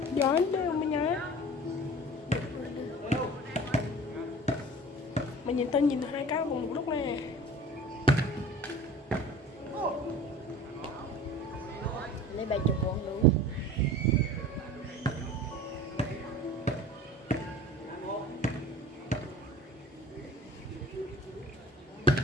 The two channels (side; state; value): both; normal; correlation 0.40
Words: Giỏi đâu mà nhá. Mà nhìn tao nhìn hai cái cùng một lúc nè. Lấy 70 con đủ.